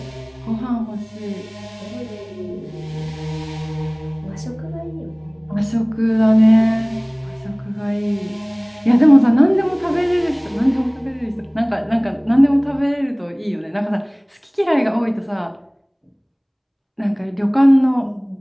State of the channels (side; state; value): both; identical; correlation 1.00